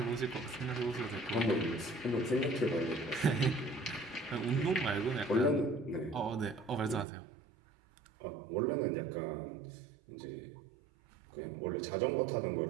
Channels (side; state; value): left; drops out; at 7.1 s